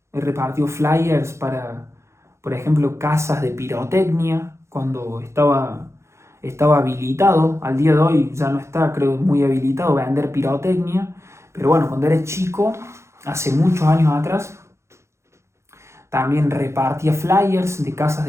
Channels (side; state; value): left; late; 0.13 ms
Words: para, por ejemplo, casas de pirotecnia, cuando estaba habilitado, al día de hoy ya no está, creo, muy habilitado vender pirotecnia, pero bueno, cuando era chico, hace muchos años atrás, también repartía flyers de casas